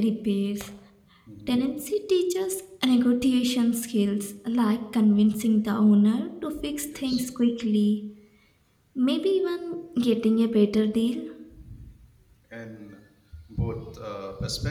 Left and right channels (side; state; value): both; identical; correlation 1.00